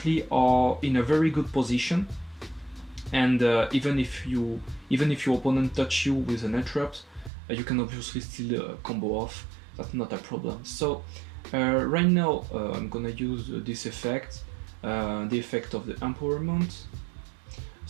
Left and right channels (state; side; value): drops out; left; at 7.3 s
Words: are in a very good position, and even if your opponent touch you with an handtrap, you can obviously still combo off. That's not a problem. So right now I'm gonna use this effect, the effect of the empowerment.